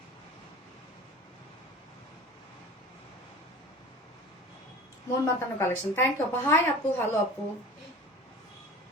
মন মাতানো কালেকশন, থ্যাংক ইউ আপু। হাই আপু, হ্যালো আপু।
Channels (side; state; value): both; normal; correlation 0.38